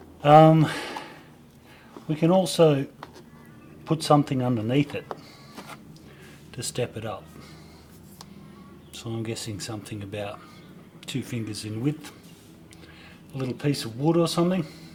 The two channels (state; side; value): identical; both; correlation 1.00